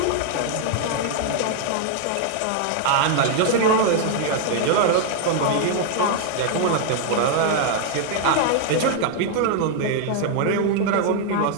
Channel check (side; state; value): both; different; correlation 0.00